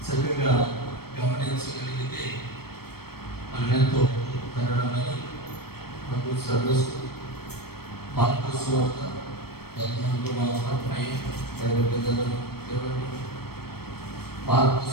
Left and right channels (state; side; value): late; right; 0.95 ms